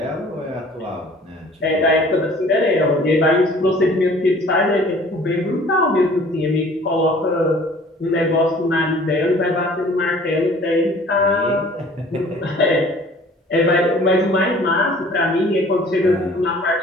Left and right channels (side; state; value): both; normal; correlation 0.51